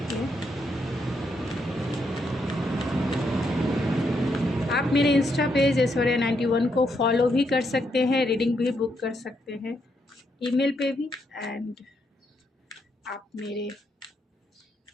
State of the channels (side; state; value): both; normal; correlation 0.78